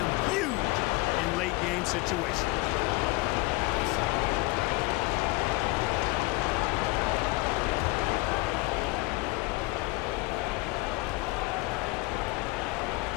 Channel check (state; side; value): quieter; right; 22.2 dB